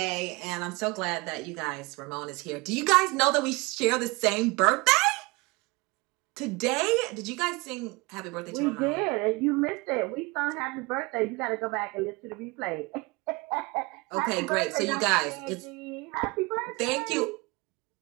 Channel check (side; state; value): left; quieter; 25.4 dB